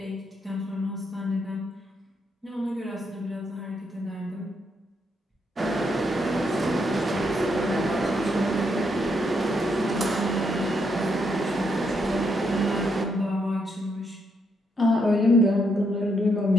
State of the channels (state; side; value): normal; both; correlation 0.77